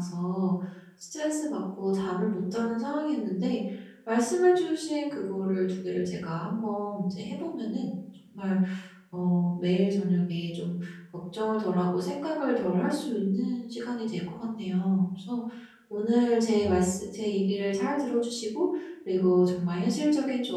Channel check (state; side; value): identical; both; correlation 1.00